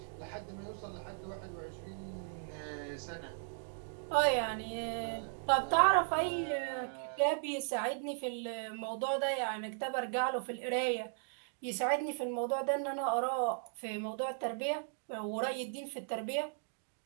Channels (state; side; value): silent; left; digital silence